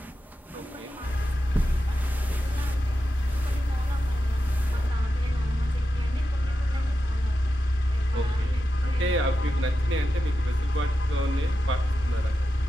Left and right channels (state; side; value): normal; both; correlation 0.90